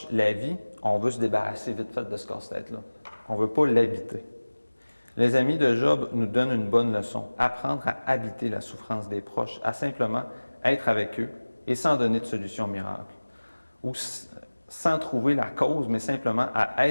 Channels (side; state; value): both; inverted; correlation -1.00